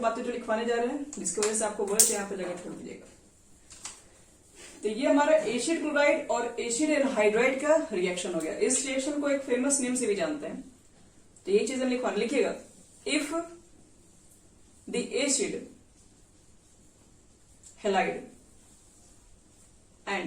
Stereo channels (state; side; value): identical; both; correlation 1.00